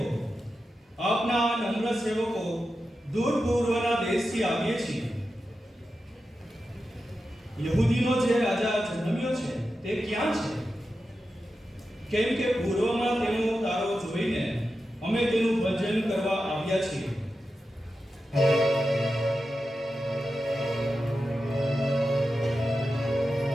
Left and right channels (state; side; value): normal; both; correlation 0.91